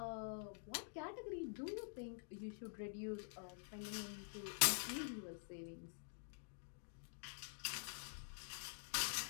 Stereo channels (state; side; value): silent; right; digital silence